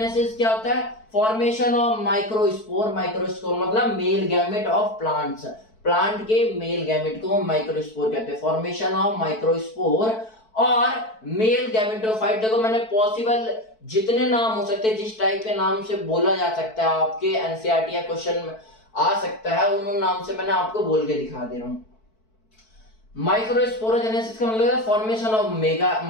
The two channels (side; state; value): right; late; 4.6 ms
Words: क्या होता है, फॉर्मेशन ऑफ माइक्रोस्पोर मतलब male gamete of plants, plant के मेल गैमेट को माइक्रोस्पोर कहते हैं, फॉर्मेशन ऑफ माइक्रोस्पोर और मेल गैमेटोफाइट। देखो मैंने पॉसिबल जितने नाम हो सकते हैं, जिस टाइप के नाम से बोला जा सकता है आपके एनसीईआरटी या क्वेश्चन में आ सकता है, उन नाम से मैंने आपको बोल के दिखा दे रहा हूं। माइक्रोस्पोरोजेनेसिस का मतलब है फॉर्मेशन